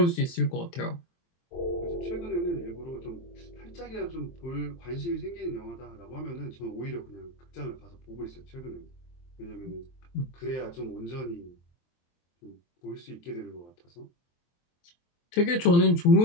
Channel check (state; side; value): late; right; 23 ms